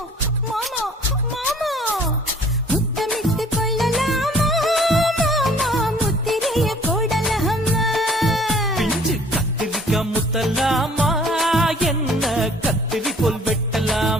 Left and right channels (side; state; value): both; normal; correlation 0.54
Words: மாமா மாமா முத்தமிட்டு கொள்ளலாமா மாமா முத்திரையை போடலாமா பிஞ்சு கத்திரிக்க முத்தலாமா என்ன கத்திரி போல்